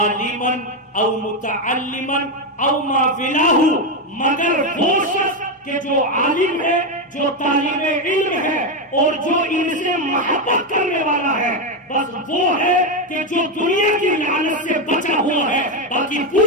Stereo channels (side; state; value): both; normal; correlation 0.08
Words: او متعلما او ما فلاہ، مگر وہ شخص کہ جو عالم ہے، جو طالب علم ہے اور جو ان سے محبت کرنے والا ہے، بس وہ ہے کہ جو دنیا کی لعنت سے بچا ہوا ہے، باقی